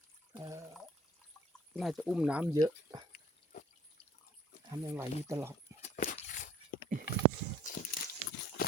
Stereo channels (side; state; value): both; normal; correlation 0.53